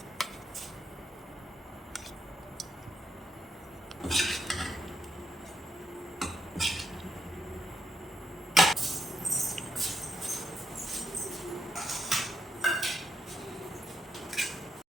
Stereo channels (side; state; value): both; normal; correlation 0.80